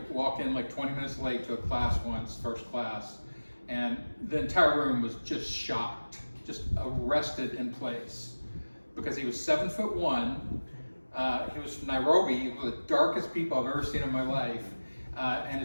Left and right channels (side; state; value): both; inverted; correlation -1.00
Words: walk in like 20 minutes late to a class once, first class, and the entire room was just shocked, just arrested in place because he was 7'1". He was from Nairobi, one of the darkest people I've ever seen in my life, and